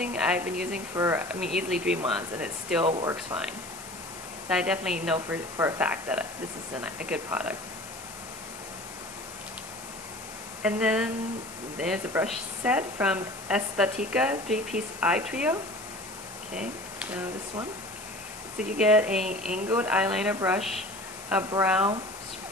I've been using for, easily 3 months, and it still works fine. So I definitely know for a fact that this is a good product. And then there's a brush set from Aesthetica 3-piece eye trio. Okay, so this one. So you get a angled eyeliner brush, a brow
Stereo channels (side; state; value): left; noise; hiss, 14 dB below the sound